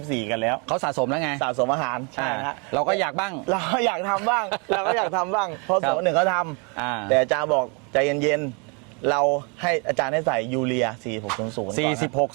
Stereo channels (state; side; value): quieter; left; 34.0 dB